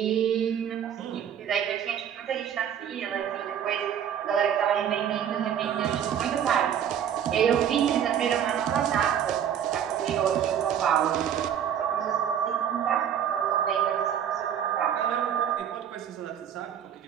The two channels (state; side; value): quieter; left; 9.1 dB